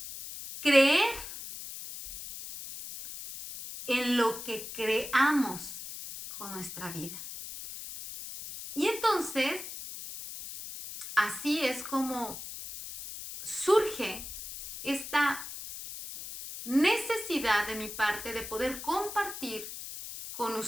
creer en lo que creamos con nuestra vida. Y entonces, así es como surge esta necesidad de mi parte de poder compartir con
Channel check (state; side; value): noise; left; hiss, 10 dB below the sound